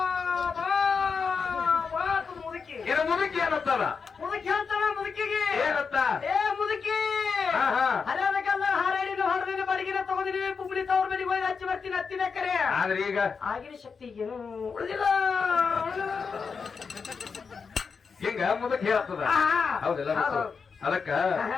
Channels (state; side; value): quieter; right; 5.5 dB